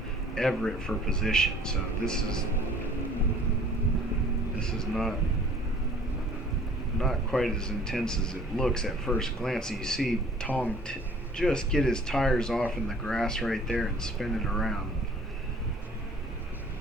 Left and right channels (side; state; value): both; normal; correlation 0.52